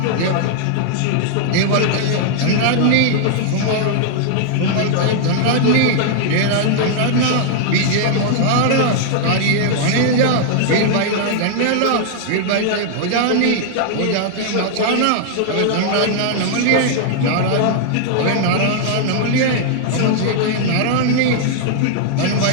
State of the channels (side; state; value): both; different; correlation -0.01